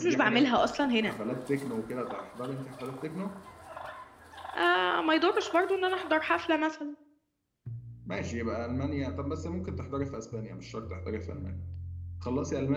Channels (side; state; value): both; identical; correlation 1.00